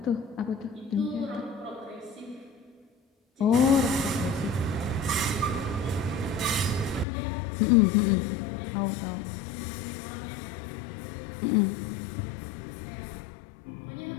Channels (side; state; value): right; drops out; at 7.1 s